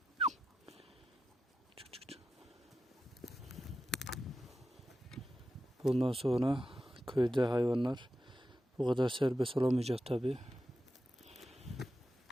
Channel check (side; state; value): both; normal; correlation 0.90